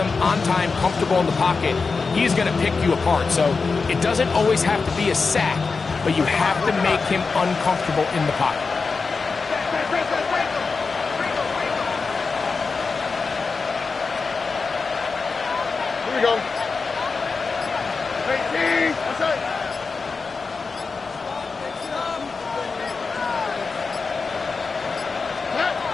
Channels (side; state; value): right; quieter; 4.6 dB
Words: on time, comfortable in the pocket, he's going to pick you apart. So it doesn't always have to be a sack, but you have to make him uncomfortable in the pocket. Here we go. 18. That's it.